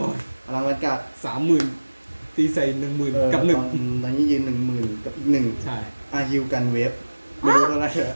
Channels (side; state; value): both; inverted; correlation -1.00